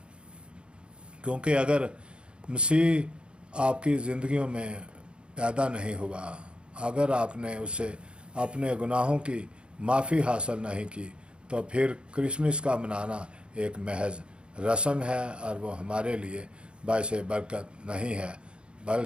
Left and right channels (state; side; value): late; left; 0.055 ms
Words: کیونکہ اگر مسیح آپ کی زندگیوں میں پیدا نہیں ہوا، اگر آپ نے اسے اپنے گناہوں کی معافی حاصل نہیں کی، تو پھر کرسمس کا منانا ایک محض رسم ہے، اور وہ ہمارے لیے باعث برکت نہیں ہے۔